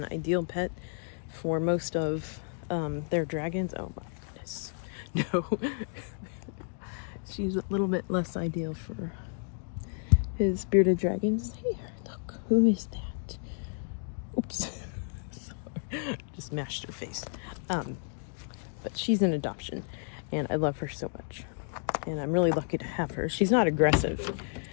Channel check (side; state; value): right; silent; 57 dB below the other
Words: ideal pet for most of their dragons. Oh my goodness. No. She's a little bit less ideal for his bearded dragons. Here, look. Who is that? Oops. Just mashed her face. But she's an adoption, and I love her so much. And I'm really lucky to have her. She's not aggressive.